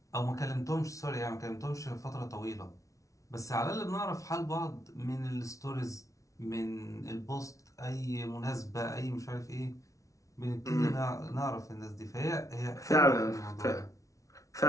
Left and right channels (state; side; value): late; right; 0.16 ms